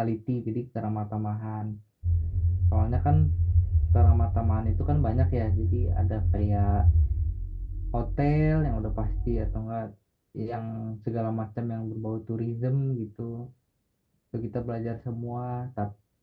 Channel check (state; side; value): identical; both; correlation 1.00